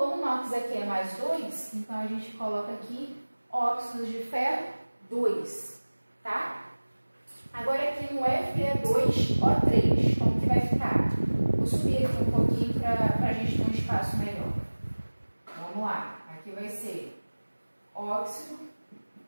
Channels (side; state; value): both; inverted; correlation -1.00